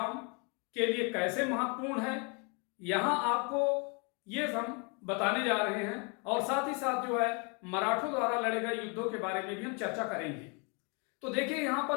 के लिए कैसे महत्वपूर्ण है, यहां आपको ये हम बताने जा रहे हैं और साथ ही साथ जो है मराठों द्वारा लड़े गए युद्धों के बारे में भी हम चर्चा करेंगे। तो देखिए यहां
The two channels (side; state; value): right; quieter; 33.9 dB